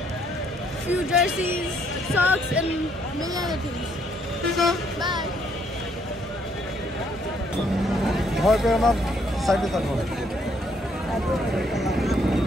few jerseys, socks, and many other things. So bye. ভয় পেয়ে আমার সাইডে থাকবো।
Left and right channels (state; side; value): normal; both; correlation 0.69